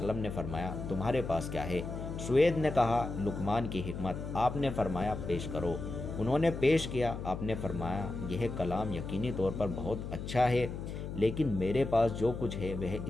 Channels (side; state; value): left; noise; hum, 7 dB below the sound